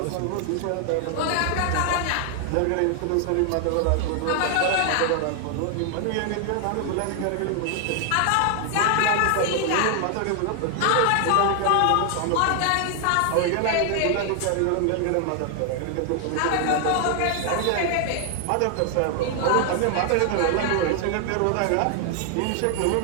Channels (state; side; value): different; both; correlation 0.00